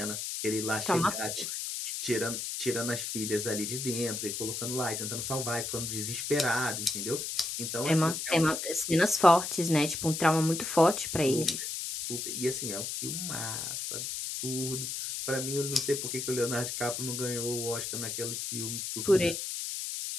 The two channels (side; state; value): left; noise; hiss, 4 dB below the sound